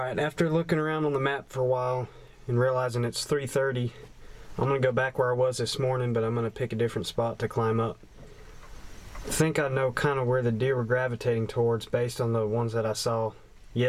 after looking around on the map for a while and realizing it's 3:30, I'm gonna go back where I was this morning, but I'm gonna pick a different spot to climb up. I think I know kind of where the deer were gravitating towards based on the ones that I saw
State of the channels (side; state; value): both; identical; correlation 1.00